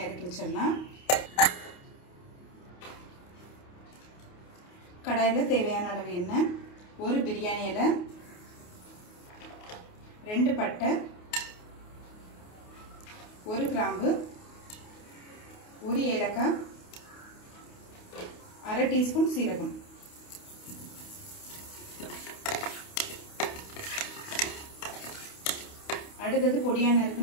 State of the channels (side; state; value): right; late; 28 ms